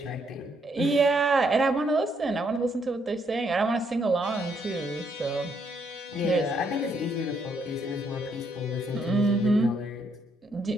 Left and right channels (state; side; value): normal; both; correlation 0.73